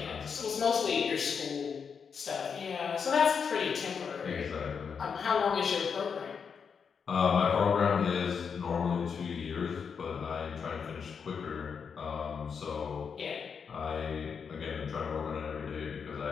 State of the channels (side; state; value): right; quieter; 6.3 dB